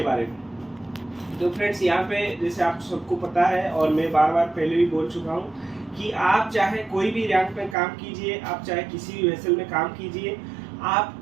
बारे में। तो फ्रेंड्स, यहाँ पे जैसे आप सबको पता है और मैं बार बार पहले भी बोल चुका हूँ कि आप चाहे कोई भी रैंक में काम कीजिए, आप चाहे किसी भी वेसल में काम कीजिए, आप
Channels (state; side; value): drops out; left; at 7.8 s